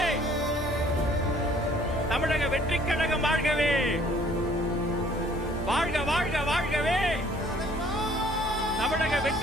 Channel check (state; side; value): normal; both; correlation 0.58